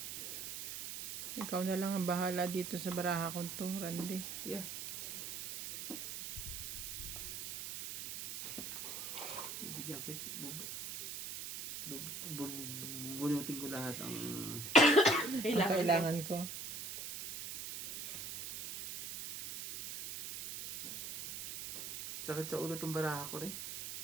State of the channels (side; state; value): right; noise; hiss, 7 dB below the sound